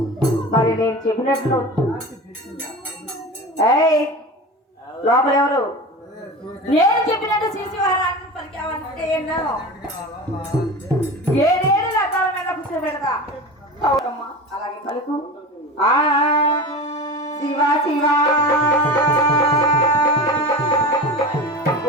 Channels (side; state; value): both; normal; correlation 0.30